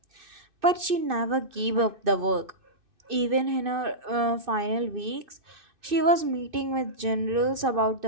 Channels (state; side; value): late; left; 2.6 ms